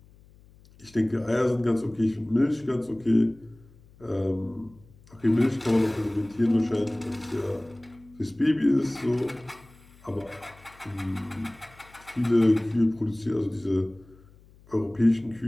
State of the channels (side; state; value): left; noise; hum, 26 dB below the sound